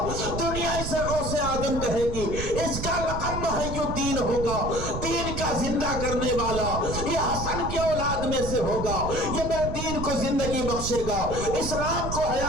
دنیا اسے غوث آدم کہے گی، اس کا لقب محی الدین ہوگا، دین کا زندہ کرنے والا یہ حسن کی اولاد میں سے ہوگا، یہ میرے دین کو زندہ زندگی بخشے گا، اسلام کو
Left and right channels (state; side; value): noise; right; rumble, 5 dB below the sound